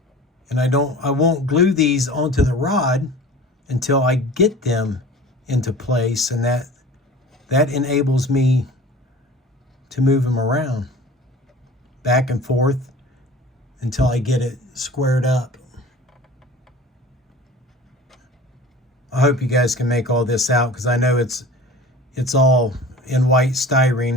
And I won't glue these onto the rod until I get them into place, and that enables me to move them around back and forth until I get it squared up. I hope you guys can make all this out, because I know it's all in white styrene.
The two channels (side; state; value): both; normal; correlation 0.41